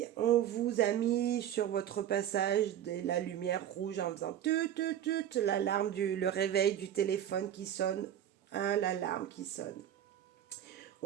on vous a mis sur votre passage de la lumière rouge en faisant tut, l'alarme, le réveil du téléphone qui sonne, l'alarme qui sonne.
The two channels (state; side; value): quieter; left; 10.6 dB